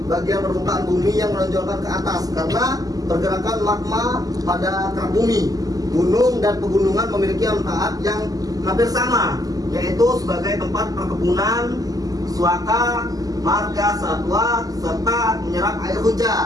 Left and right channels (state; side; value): late; left; 0.17 ms